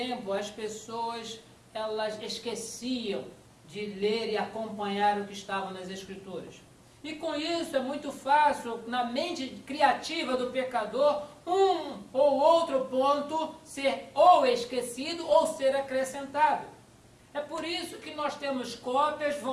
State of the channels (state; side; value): identical; both; correlation 1.00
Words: as pessoas elas esqueciam de ler e acompanhar o que estava nas Escrituras. E com isso é muito fácil, na mente criativa do pecador, um ou outro ponto ser ou esquecido ou ser acrescentado. É por isso que nós temos cópias